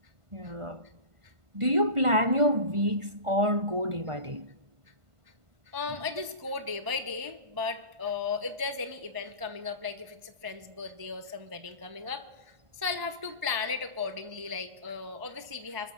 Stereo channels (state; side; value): late; left; 1.5 ms